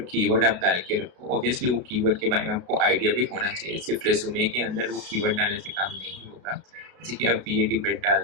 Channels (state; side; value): late; left; 32 ms